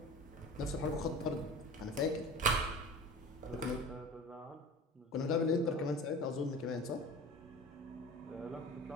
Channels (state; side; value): normal; both; correlation 0.36